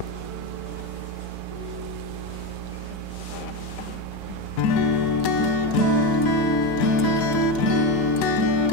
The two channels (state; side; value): normal; both; correlation 0.15